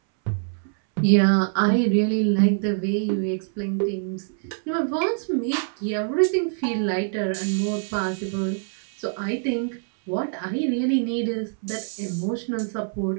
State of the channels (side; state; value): left; silent; 62 dB below the other